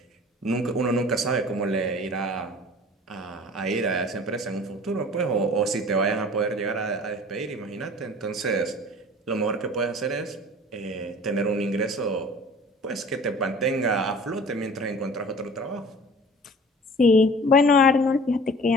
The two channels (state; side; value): normal; both; correlation 0.45